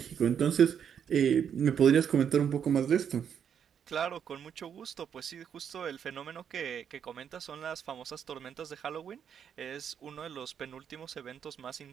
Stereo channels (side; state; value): left; quieter; 8.1 dB